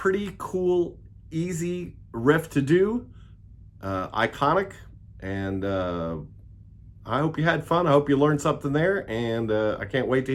cool, easy riff to do. Iconic. And I hope you had fun. I hope you learned something there. And I can't wait to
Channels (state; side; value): identical; both; correlation 1.00